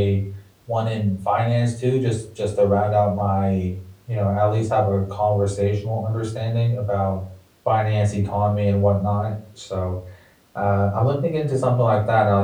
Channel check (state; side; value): identical; both; correlation 1.00